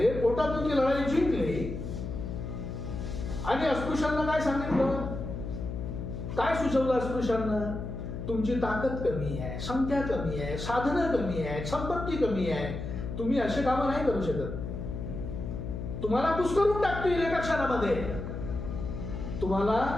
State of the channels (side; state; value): left; noise; hum, 6 dB below the sound